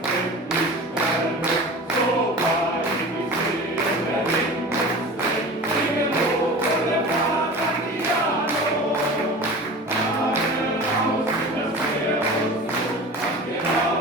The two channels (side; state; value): both; normal; correlation 0.36